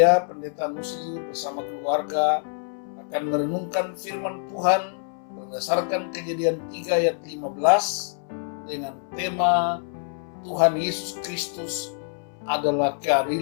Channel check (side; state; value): right; silent; 61 dB below the other